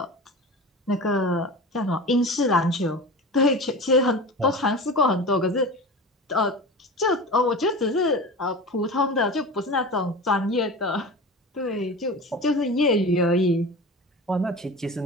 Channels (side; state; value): both; normal; correlation 0.32